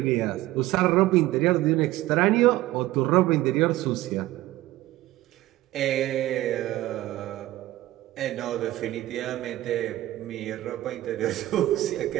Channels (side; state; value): left; quieter; 16.1 dB